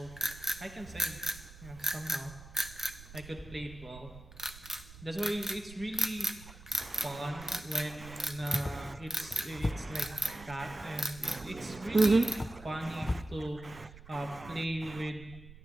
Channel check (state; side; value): noise; right; rumble, 17 dB below the sound